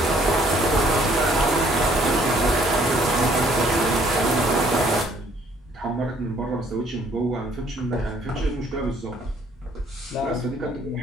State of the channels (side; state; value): both; normal; correlation 0.62